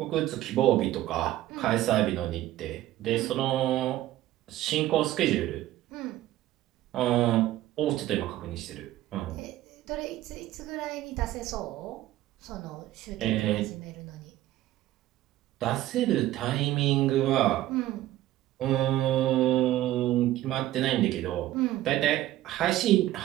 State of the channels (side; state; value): left; quieter; 14.7 dB